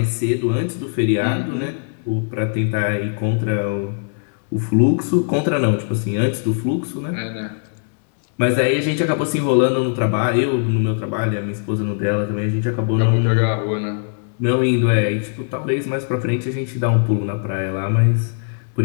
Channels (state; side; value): silent; right; digital silence